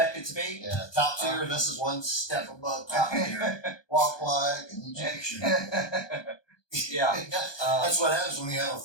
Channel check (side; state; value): right; late; 1.2 ms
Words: it to be. Yeah, top tier. This is one step above top tier. Walk like an Egyptian. Yeah. That's what happens when you have a